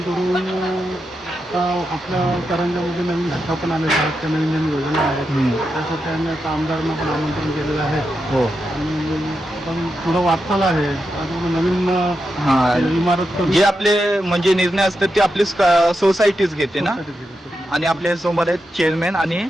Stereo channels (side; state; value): both; normal; correlation 0.87